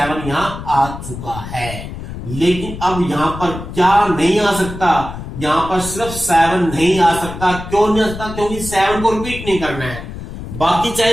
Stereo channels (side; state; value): left; noise; rumble, 10 dB below the sound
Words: यहाँ आ चुका है। लेकिन अब यहाँ पर क्या नहीं आ सकता? यहाँ पर सिर्फ 7 नहीं आ सकता। क्यों नहीं आ सकता? क्योंकि 7 को रिपीट नहीं करना है, बाकी चाहे